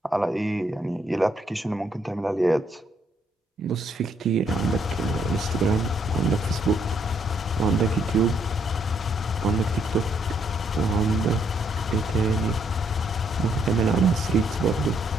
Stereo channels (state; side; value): normal; both; correlation 0.72